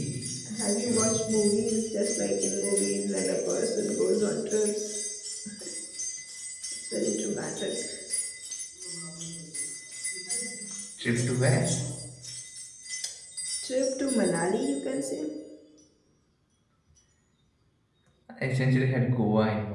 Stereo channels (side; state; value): both; identical; correlation 1.00